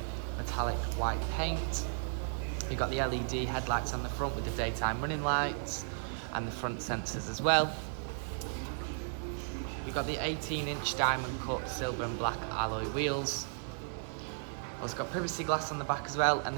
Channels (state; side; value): silent; left; digital silence